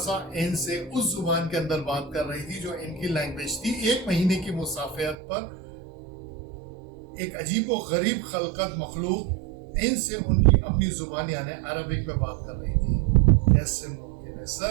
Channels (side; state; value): left; drops out; at 5.2 s